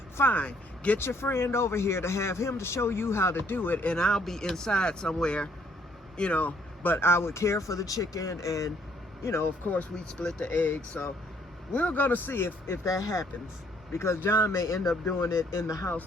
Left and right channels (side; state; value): both; normal; correlation 0.66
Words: fine. Get your friend over here to have him to show you how to do it, and I'll be inside somewhere, you know, but I would care for the chicken, and, you know, of course, we'd split the eggs. So we're going to see if that happens, because John may end up doing it in the house